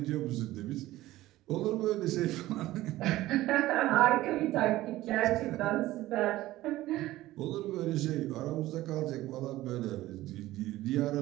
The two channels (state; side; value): quieter; left; 16.3 dB